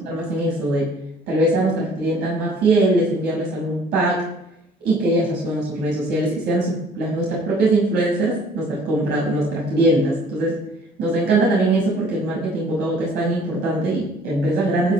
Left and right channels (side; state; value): both; normal; correlation 0.55